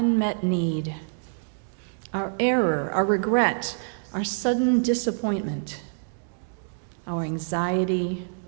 need, our error, our regret, our sudden disappointment, our anxiety,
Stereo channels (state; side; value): silent; left; digital silence